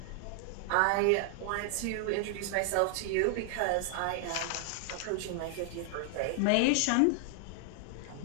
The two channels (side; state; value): both; different; correlation 0.00